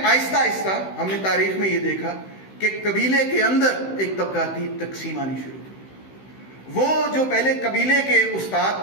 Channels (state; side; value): late; right; 16 ms